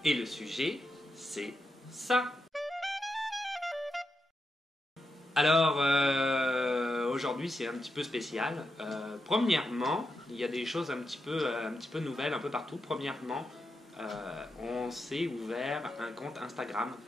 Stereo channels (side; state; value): both; normal; correlation 0.86